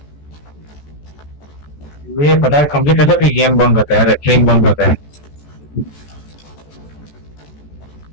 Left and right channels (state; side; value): late; right; 14 ms